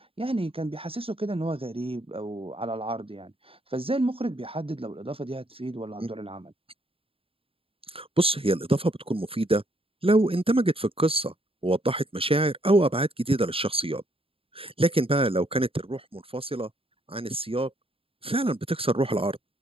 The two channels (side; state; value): left; late; 0.27 ms